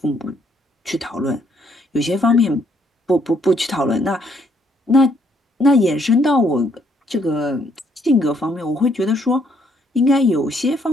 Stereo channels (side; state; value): both; normal; correlation 0.69